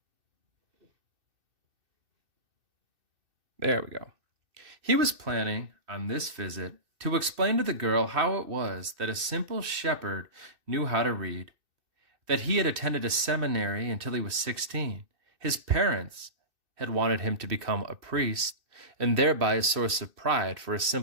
There we go. He was planning on this visit to explain to the girl how it was that a simple shepherd knew how to read, that he had attended a seminary until he was 16. His parents had wanted him to become a priest, and thereby a source of pride for a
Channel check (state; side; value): late; left; 2.6 ms